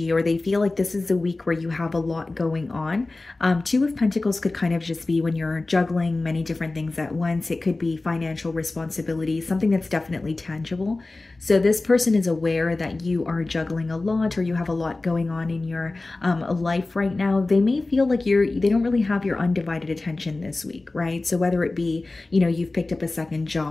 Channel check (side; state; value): right; quieter; 3.2 dB